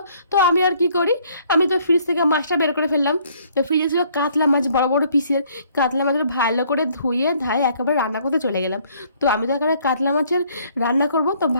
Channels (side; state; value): both; inverted; correlation -0.63